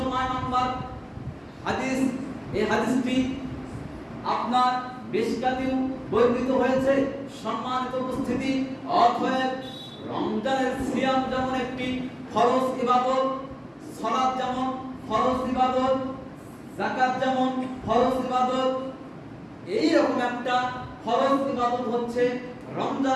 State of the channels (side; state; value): both; identical; correlation 1.00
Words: নম্বর হাদিস। এই হাদিসটি আপনার মিশকাতেও বর্ণিত হয়েছে। সম্মানিত উপস্থিতি, অতএব রমজানের সিয়াম যেমন একটি ফরজ ইবাদত, সালাত যেমন ফরজ ইবাদত, যাকাত যেমন ফরজ ইবাদত, এই রকম একটা ফরজ ইবাদত হচ্ছে